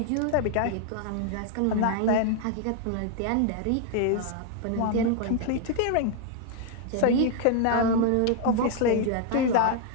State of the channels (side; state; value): both; different; correlation 0.00